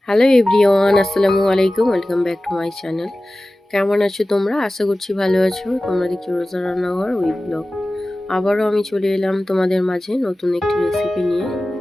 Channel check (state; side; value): normal; both; correlation 0.96